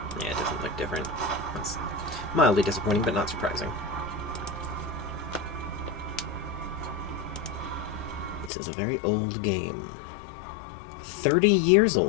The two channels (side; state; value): right; drops out; at 8.5 s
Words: Yeah, it doesn't look different. That's mildly disappointing, but not surprising. This is a very old game. 30 years